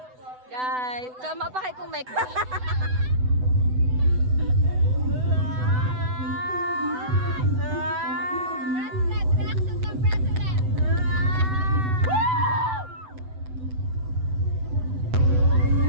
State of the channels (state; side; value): late; left; 7.9 ms